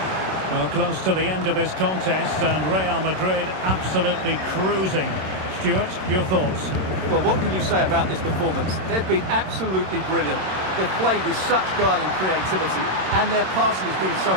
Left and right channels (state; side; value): late; left; 27 ms